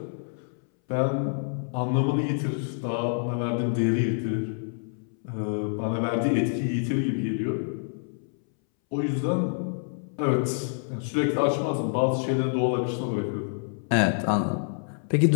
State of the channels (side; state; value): right; silent; 60 dB below the other